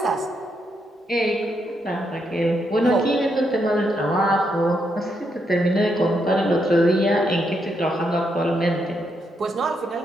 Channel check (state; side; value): normal; both; correlation 0.79